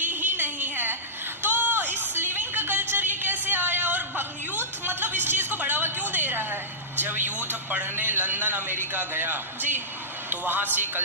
ही नहीं है। तो इस लिविंग का कल्चर ये कैसे आया और यूथ मतलब इस चीज को बढ़ावा क्यों दे रहा है? जब यूथ पढ़ने लंदन अमेरिका गया जी, तो वहाँ से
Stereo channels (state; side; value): normal; both; correlation -0.15